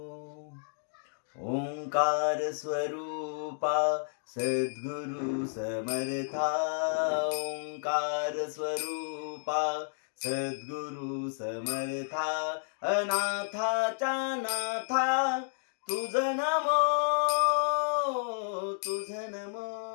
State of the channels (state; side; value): silent; right; digital silence